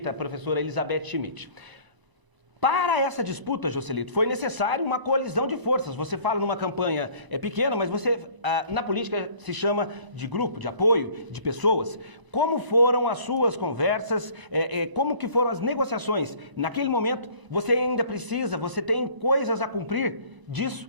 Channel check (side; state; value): left; late; 1.0 ms